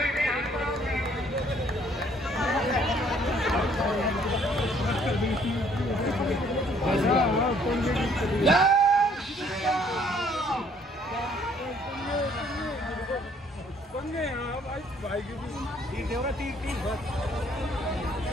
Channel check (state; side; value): normal; both; correlation 0.62